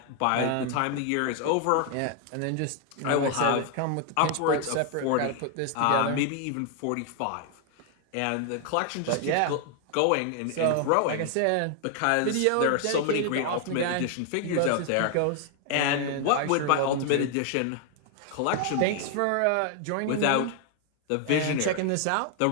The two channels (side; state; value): both; different; correlation 0.00